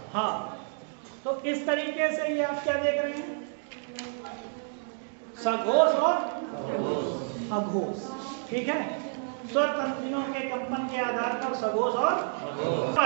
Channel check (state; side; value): silent; left; digital silence